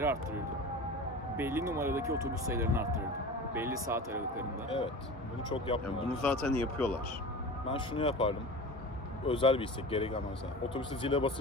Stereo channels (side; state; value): both; normal; correlation 0.33